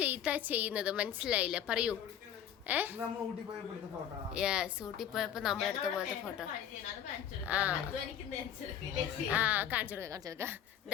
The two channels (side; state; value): right; quieter; 9.6 dB